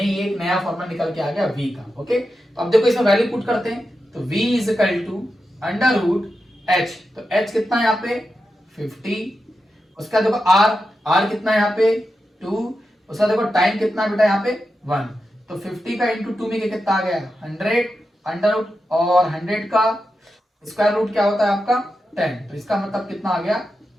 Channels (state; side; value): normal; both; correlation 0.89